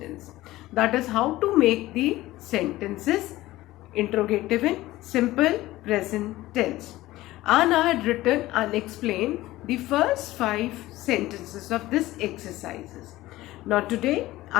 That is how to make the sentences interrogative in simple present tense. And I had written and explained the first 5 sentences of this exercises. Now today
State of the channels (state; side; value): quieter; right; 17.0 dB